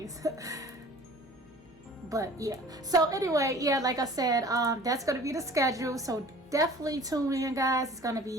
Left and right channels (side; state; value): both; normal; correlation 0.46